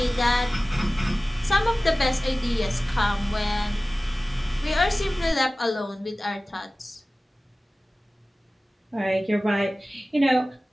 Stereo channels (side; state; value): both; normal; correlation 0.97